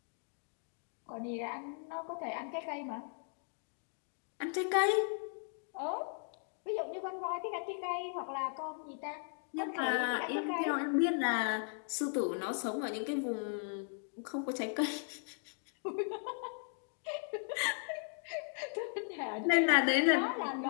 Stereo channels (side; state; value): right; silent; 53 dB below the other